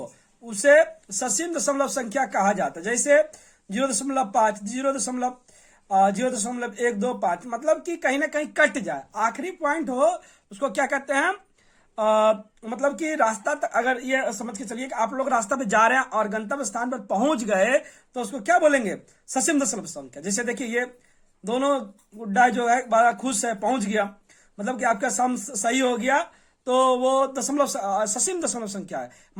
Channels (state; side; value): identical; both; correlation 1.00